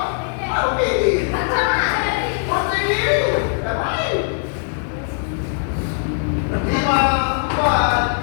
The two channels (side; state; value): right; silent; digital silence